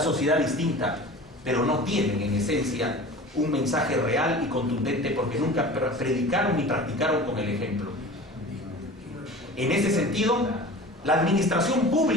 distinta, pero no tienen en esencia un mensaje real y contundente porque nunca predicaron ni practicaron con el ejemplo. En ese sentido, la administración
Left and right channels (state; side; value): normal; both; correlation 0.38